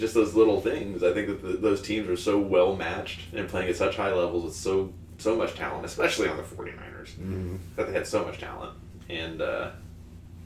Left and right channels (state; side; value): identical; both; correlation 1.00